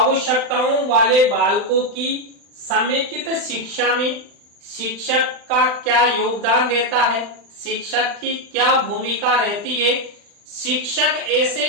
वाले बालकों की समेकित शिक्षा में शिक्षक का क्या योगदान रहता है, शिक्षक की क्या भूमिका रहती है, शिक्षक ऐसे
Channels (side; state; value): left; late; 39 ms